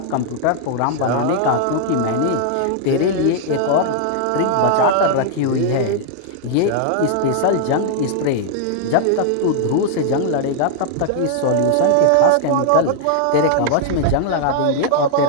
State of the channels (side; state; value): both; different; correlation 0.00